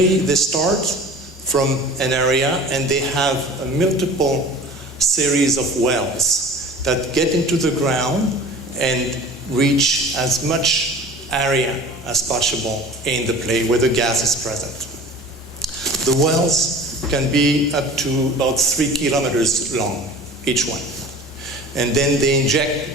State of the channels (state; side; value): normal; both; correlation 0.41